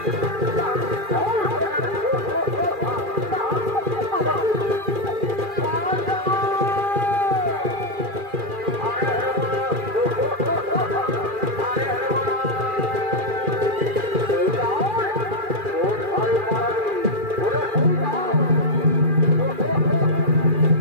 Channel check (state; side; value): late; left; 2.4 ms